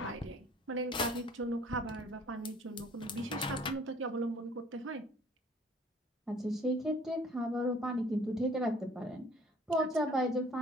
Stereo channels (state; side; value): normal; both; correlation 0.54